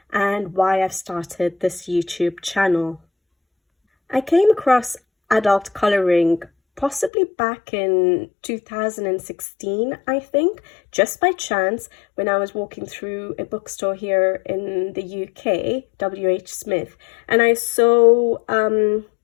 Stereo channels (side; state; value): right; drops out; at 7.1 s